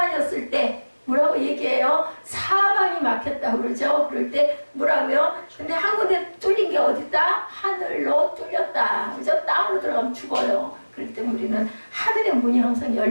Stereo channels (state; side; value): inverted; both; correlation -1.00